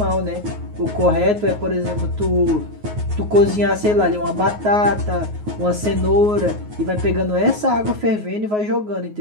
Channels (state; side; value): late; left; 9.5 ms